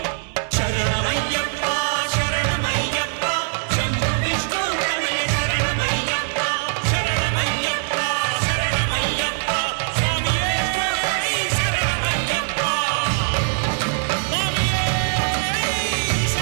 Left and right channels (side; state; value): left; silent; digital silence